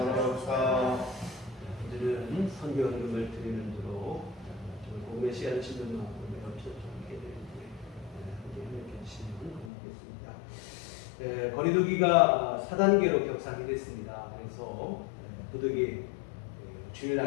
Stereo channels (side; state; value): right; drops out; at 9.7 s